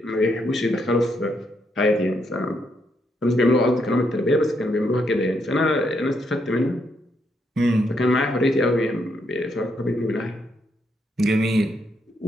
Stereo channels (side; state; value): both; normal; correlation 0.77